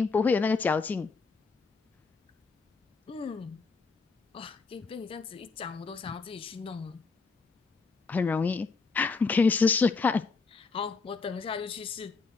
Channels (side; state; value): right; quieter; 4.5 dB